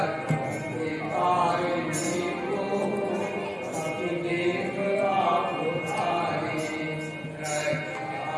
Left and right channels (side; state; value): both; identical; correlation 1.00